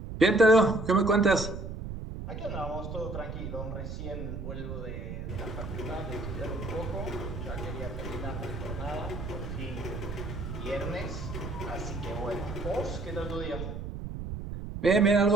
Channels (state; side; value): noise; right; rumble, 7 dB below the sound